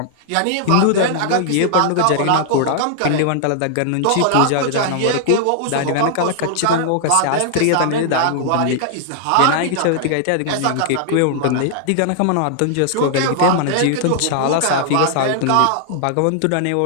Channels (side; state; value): both; different; correlation -0.01